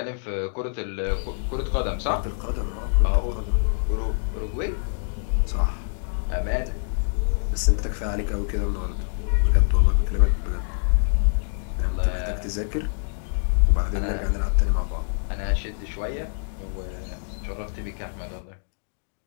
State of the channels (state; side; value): silent; right; digital silence